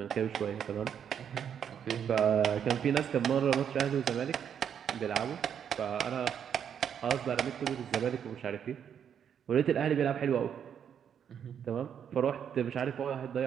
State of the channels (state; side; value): quieter; left; 8.4 dB